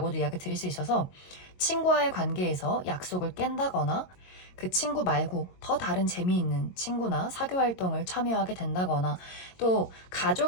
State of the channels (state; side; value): late; right; 22 ms